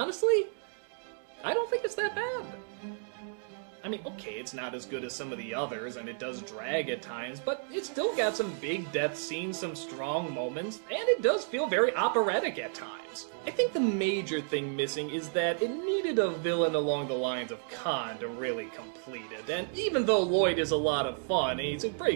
I don't think it's that bad. I mean, okay, it's not as good as some of the others, and it does drag at times, but it's still got some big death scenes, some strong moments, and it does feel very operatic at times. I think the major thing missing is that it needed a villain along the lines of Khan to really complete it, and even though Lloyd is a lot of fun, and he's a pretty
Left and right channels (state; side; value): silent; left; digital silence